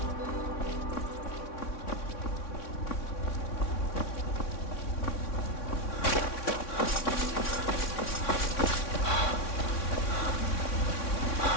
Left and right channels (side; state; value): right; late; 3.6 ms